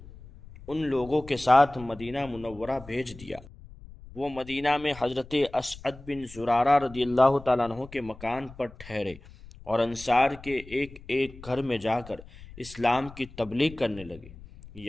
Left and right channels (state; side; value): noise; left; rumble, 18 dB below the sound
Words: ان لوگوں کے ساتھ مدینہ منورہ بھیج دیا۔ وہ مدینہ میں حضرت اسعد بن زرارہ رضی اللہ تعالیٰ عنہ کے مکان پر ٹھہرے اور انصار کے ایک ایک گھر میں جا کر اسلام کی تبلیغ کرنے لگے،